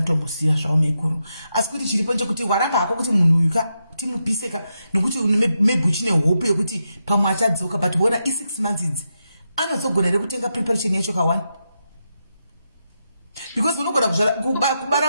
zvavo maiguru asi kuti chiripo nchekuti waramba hako kuti munhu uyu kuti mupiseka nokuti maybe uchine hope yekuti pamwe achadzoka but wona i6 months idzi anodzogona here kutenga preparation yacho ka1 because unogona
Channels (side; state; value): both; inverted; correlation -0.85